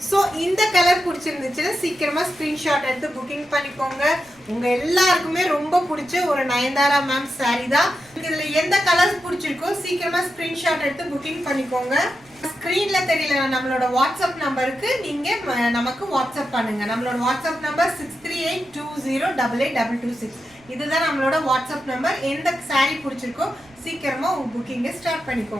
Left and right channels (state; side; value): noise; right; rumble, 30 dB below the sound